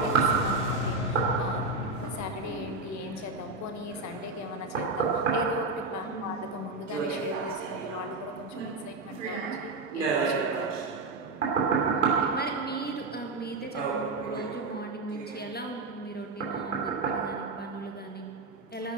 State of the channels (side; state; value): left; quieter; 3.3 dB